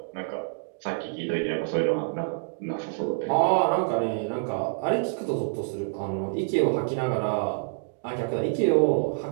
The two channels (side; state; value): left; silent; digital silence